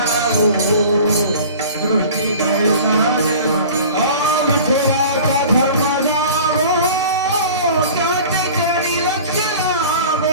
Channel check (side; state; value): both; inverted; correlation -0.41